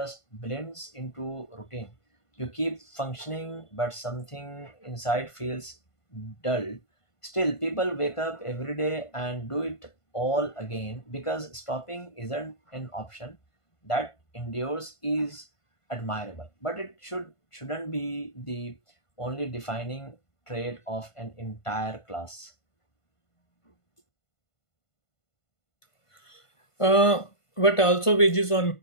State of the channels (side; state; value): right; late; 1.5 ms